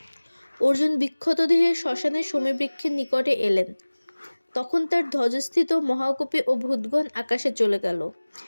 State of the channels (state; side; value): inverted; both; correlation -1.00